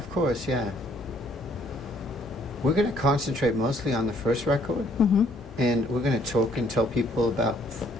course, yeah. We're going to concentrate mostly on the first record, and we're going to talk and tell people about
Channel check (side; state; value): both; normal; correlation 0.63